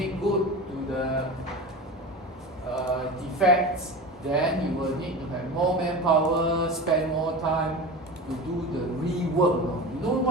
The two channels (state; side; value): normal; both; correlation 0.29